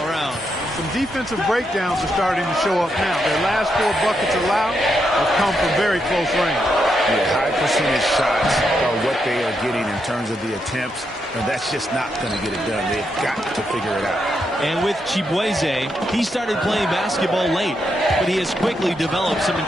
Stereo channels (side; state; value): both; normal; correlation 0.81